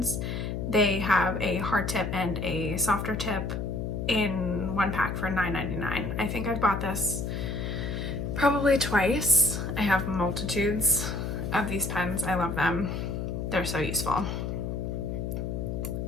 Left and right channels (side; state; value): left; noise; hum, 3 dB below the sound